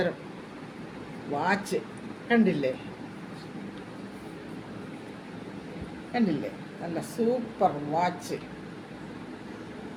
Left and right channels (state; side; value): identical; both; correlation 1.00